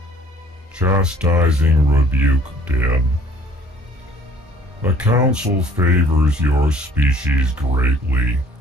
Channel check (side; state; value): both; normal; correlation 0.55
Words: Chastising rebuke, Din. The Council favors your species greatly.